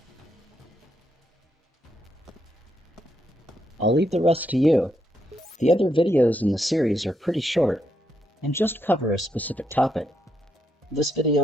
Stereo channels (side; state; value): both; normal; correlation 0.79